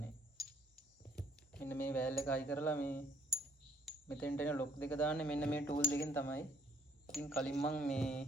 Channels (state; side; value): normal; both; correlation 0.63